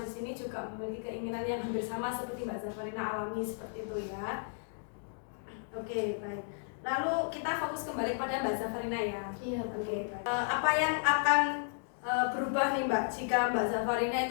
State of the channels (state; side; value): silent; right; digital silence